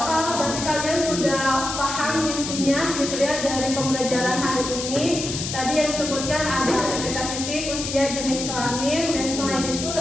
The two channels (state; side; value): noise; left; hiss, 5 dB below the sound